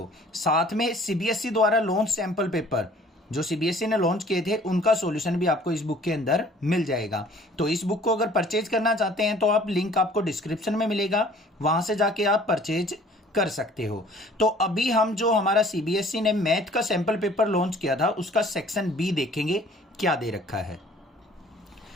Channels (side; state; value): both; normal; correlation 0.53